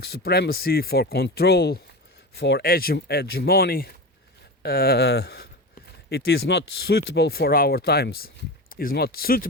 supremacy, for control, for hegemony. It is not suitable for our times. It is not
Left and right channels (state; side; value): normal; both; correlation 0.25